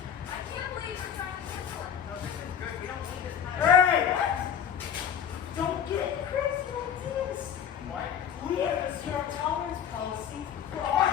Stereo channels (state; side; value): quieter; right; 8.6 dB